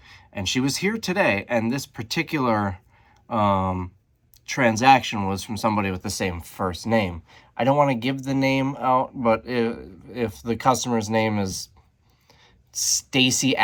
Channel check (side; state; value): both; identical; correlation 1.00